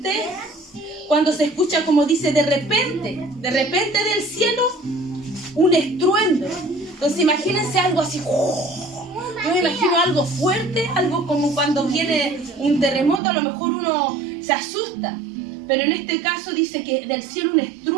cuando se escucha, como dice, de repente del cielo un estruendo. Entonces imagínense algo así. Yo me imagino algo fuerte, algo como cuando viene un terremoto, a lo mejor uno se asusta. Pero en este caso dice que del cielo un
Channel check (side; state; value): left; drops out; at 13.2 s